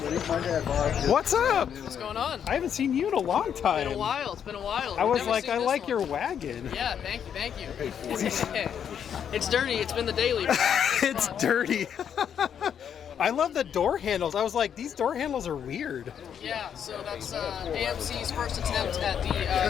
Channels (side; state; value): right; quieter; 8.4 dB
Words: What's up? What's going on? I haven't seen you in a long time. It's been a while. It's been a while. I was Never like, seen I this like one. your wagon. Yeah, thank you. It's dirty. It's been the daily. but It's fun. dirty. I love the door handles. I was like, these door handles are weird. Yeah, so that's AMC's first attempt at the